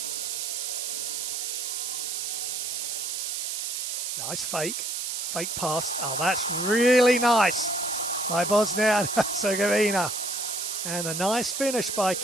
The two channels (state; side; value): noise; right; hiss, 3 dB below the sound